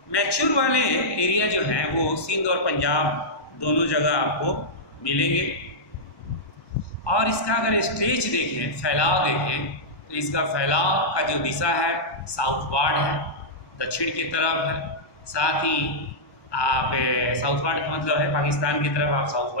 मैच्योर वाले एरिया जो हैं वो सिंध और पंजाब दोनों जगह आपको मिलेंगे। और इसका अगर स्टेज देखें, फैलाव देखें, तो इसका फैलाव का जो दिशा है साउथवार्ड है, दक्षिण की तरफ है। साथ ही आप साउथवार्ड का मतलब है पाकिस्तान की तरफ, आप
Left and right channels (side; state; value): right; late; 1.1 ms